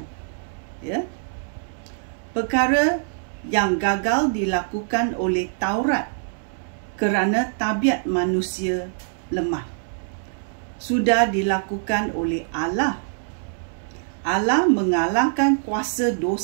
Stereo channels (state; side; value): silent; left; 63 dB below the other